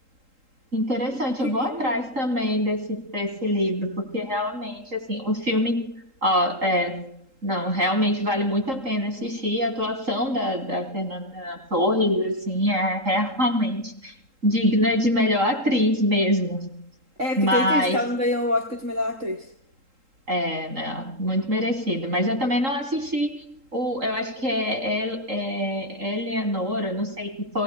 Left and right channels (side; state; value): left; late; 3.8 ms